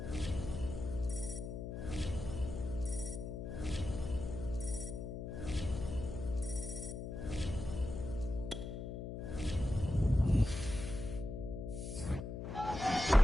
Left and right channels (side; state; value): left; noise; hum, 6 dB below the sound